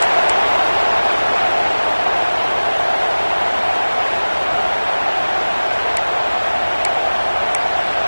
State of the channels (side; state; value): both; inverted; correlation -1.00